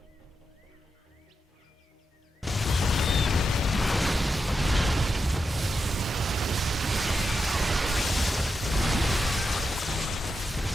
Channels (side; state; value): both; normal; correlation 0.87